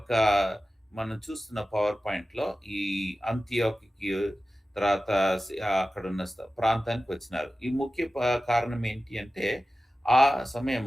మనం చూస్తున్న పవర్ పాయింట్లో ఈ అంతియోకి తర్వాత అక్కడ ఉన్న ప్రాంతానికి వచ్చినారు. ఈ ముఖ్య కారణం ఏంటి అంటే ఆ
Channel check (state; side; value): normal; both; correlation 0.95